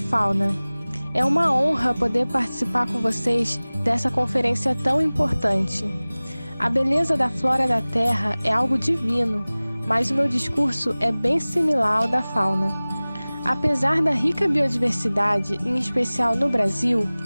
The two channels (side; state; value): both; inverted; correlation -0.99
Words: É uma honra poder participar com vocês dessa conferência tão importante. A beleza da flora da Terra é algo divino, mas o meu discurso é bem similar ao da fauna. Apesar da rica biodiversidade, em especial no Brasil,